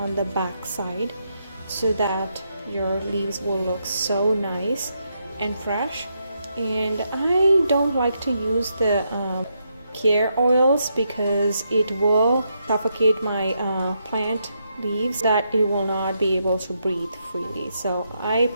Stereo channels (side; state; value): both; inverted; correlation -0.80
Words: the back side so that your leaves will look so nice and fresh. And I don't like to use the care oils because it will suffocate my plant leaves, that it will not be able to breathe freely. So I